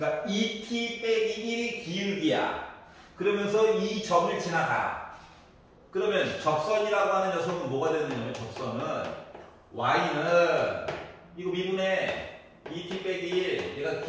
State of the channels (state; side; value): identical; both; correlation 1.00